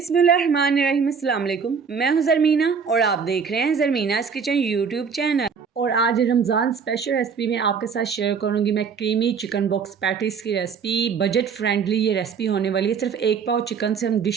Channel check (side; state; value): left; quieter; 6.1 dB